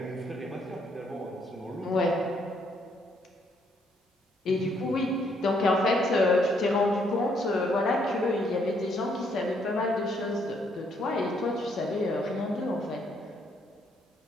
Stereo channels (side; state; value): both; normal; correlation 0.71